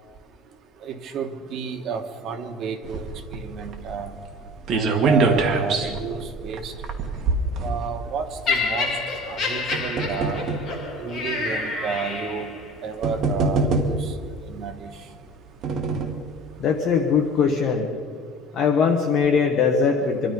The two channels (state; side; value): normal; both; correlation 0.41